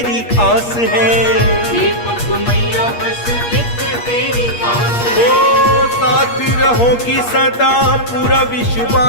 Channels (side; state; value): right; late; 8.4 ms